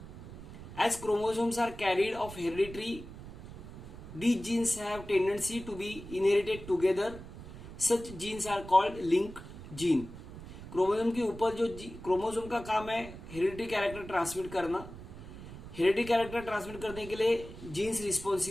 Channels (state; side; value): noise; right; rumble, 13 dB below the sound